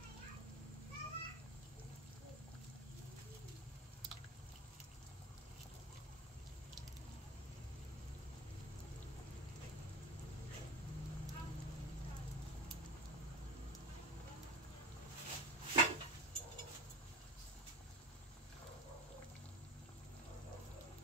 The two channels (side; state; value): both; normal; correlation 0.26